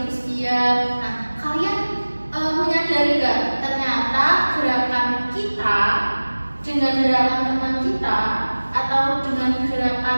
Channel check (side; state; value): both; inverted; correlation -1.00